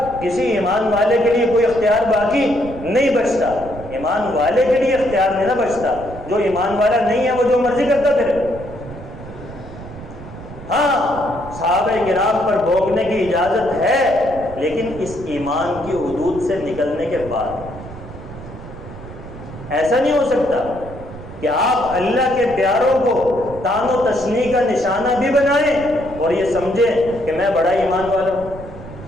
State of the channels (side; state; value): right; noise; rumble, 14 dB below the sound